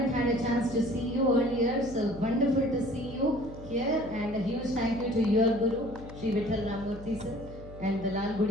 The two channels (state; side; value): noise; left; hum, 15 dB below the sound